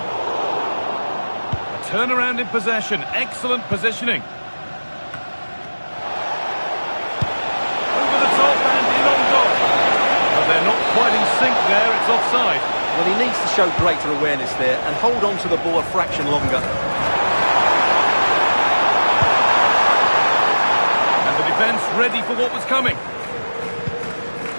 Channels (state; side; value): inverted; both; correlation -1.00